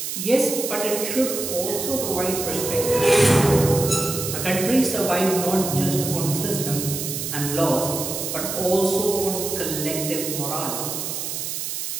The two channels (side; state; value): right; noise; hiss, 4 dB below the sound